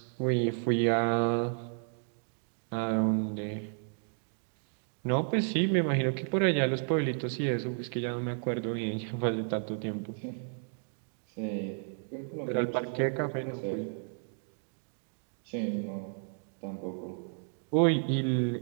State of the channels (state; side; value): silent; left; 56 dB below the other